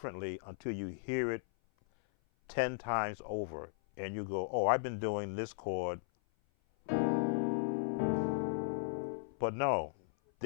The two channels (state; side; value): silent; right; 54 dB below the other